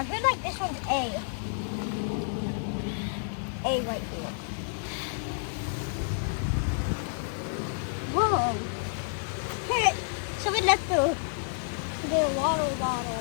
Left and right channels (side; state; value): right; silent; 58 dB below the other